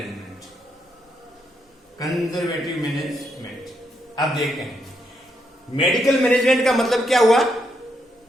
अब देखते हैं मेडिकल मैनेजमेंट का मतलब क्या हुआ?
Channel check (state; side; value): normal; both; correlation 0.78